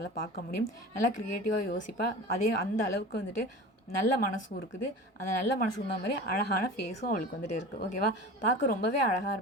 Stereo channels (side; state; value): both; normal; correlation 0.35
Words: பார்க்க முடியும், நல்லா க்ரியேட்டிவாக யோசிப்பா. அதே அந்த அளவுக்கு வந்துட்டு நல்ல மனசும் இருக்குது. அந்த நல்ல மனசுக்கு தகுந்த மாதிரி அழகான ஃபேஸும் அவளுக்கு வந்துட்டு இருக்குது. ஓகேவா? பார்க்க ரொம்பவே அழகாக